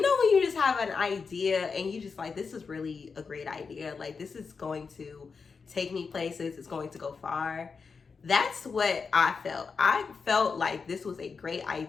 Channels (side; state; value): right; quieter; 5.2 dB